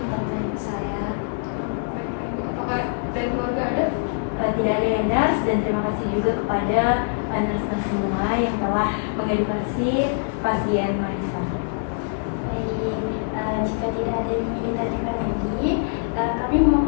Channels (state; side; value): silent; right; 59 dB below the other